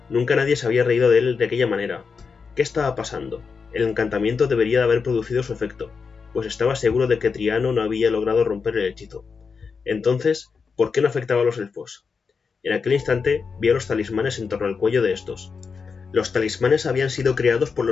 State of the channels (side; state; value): right; quieter; 5.4 dB